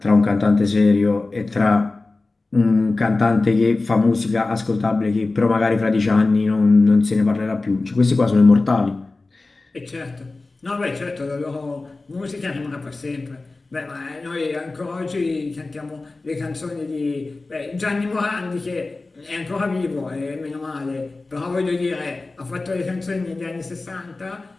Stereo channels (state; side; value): quieter; right; 3.4 dB